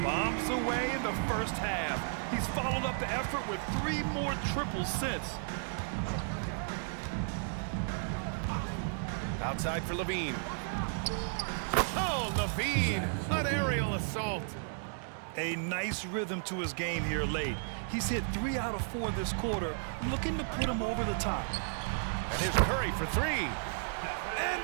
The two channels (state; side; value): silent; left; digital silence